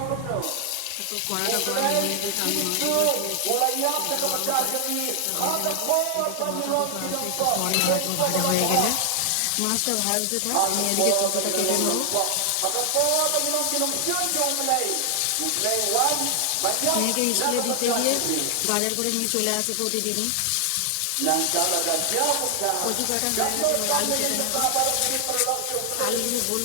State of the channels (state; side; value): different; both; correlation 0.00